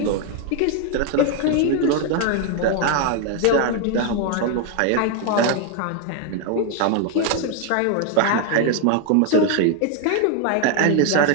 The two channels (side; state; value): both; different; correlation 0.01